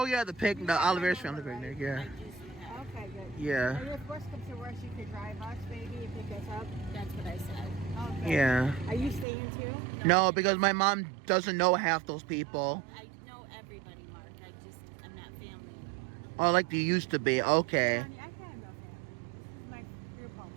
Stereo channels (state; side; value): drops out; left; at 9.2 s